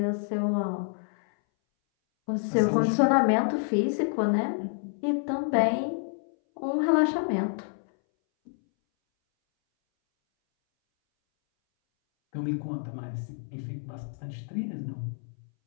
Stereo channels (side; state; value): right; silent; 59 dB below the other